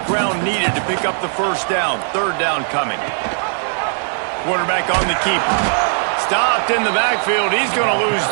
ground needed to pick up the first down. Third down coming. Quarterback on the keeper. Stopped in the backfield. He's going to lose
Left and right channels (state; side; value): silent; left; 67 dB below the other